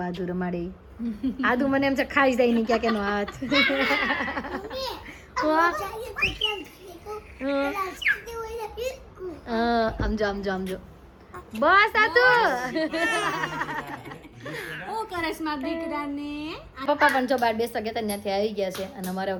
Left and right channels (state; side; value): identical; both; correlation 1.00